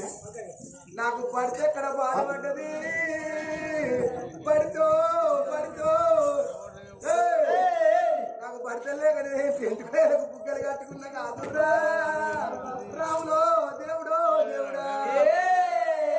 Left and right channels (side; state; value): both; identical; correlation 1.00